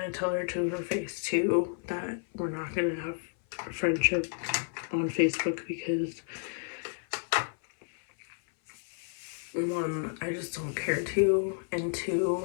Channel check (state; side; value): silent; right; 57 dB below the other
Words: tell her to her face too that we're not gonna have a friendship on Facebook because one, I just don't care to, and